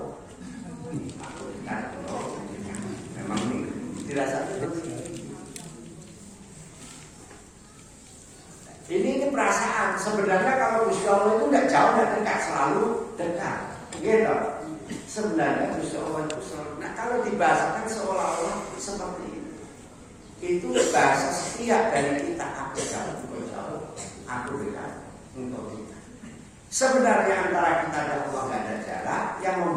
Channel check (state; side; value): identical; both; correlation 1.00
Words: aku dekat, memang ini dirasa terus. Ini perasaan. Sebenarnya kalau Gusti Allah itu tidak jauh, tidak dekat, selalu dekat. Gitu. Sebenarnya Gusti Allah itu selalu. Nah kalau dibahasakan seolah-olah seperti itu, itu bahasa setiap dari kita. Aku jauh, aku dekat untuk kita. Sebenarnya antara kita dan Allah tidak ada jarak. Yang